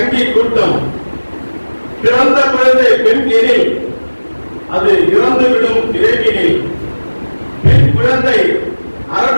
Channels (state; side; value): inverted; both; correlation -1.00